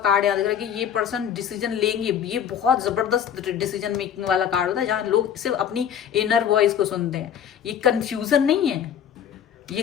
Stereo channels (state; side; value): quieter; right; 8.9 dB